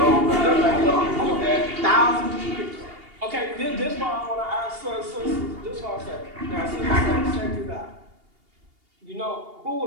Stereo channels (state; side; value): late; left; 2.8 ms